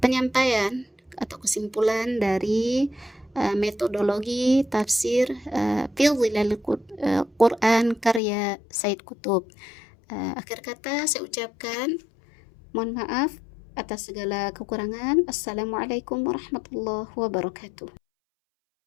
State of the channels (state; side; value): drops out; right; at 8.2 s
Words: atau kesimpulan dari metodologi tafsir fi zilal Quran karya Said Qutb. Akhir kata saya ucapkan mohon maaf atas segala kekurangan. Assalamualaikum warahmatullahi wabarakatuh.